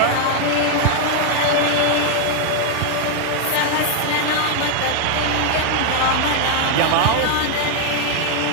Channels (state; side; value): different; both; correlation 0.00